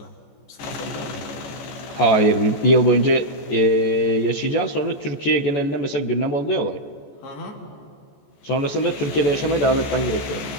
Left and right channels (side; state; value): right; late; 14 ms